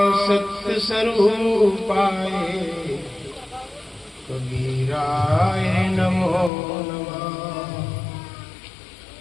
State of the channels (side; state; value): right; drops out; at 6.5 s